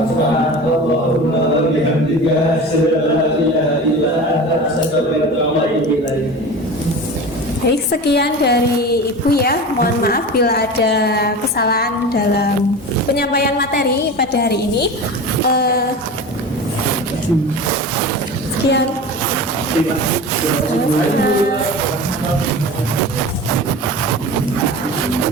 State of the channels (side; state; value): both; normal; correlation 0.32